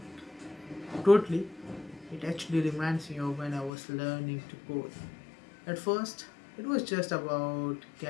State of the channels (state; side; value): drops out; right; at 3.7 s